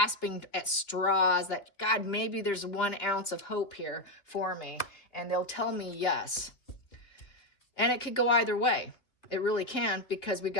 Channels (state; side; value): late; right; 2.7 ms